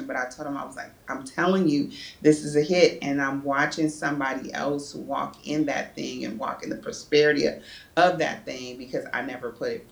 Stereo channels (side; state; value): both; identical; correlation 1.00